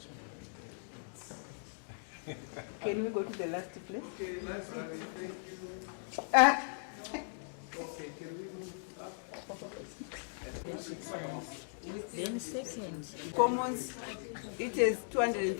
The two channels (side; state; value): right; silent; digital silence